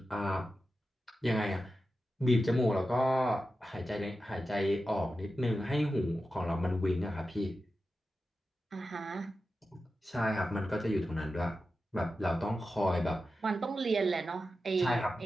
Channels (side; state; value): both; normal; correlation 0.91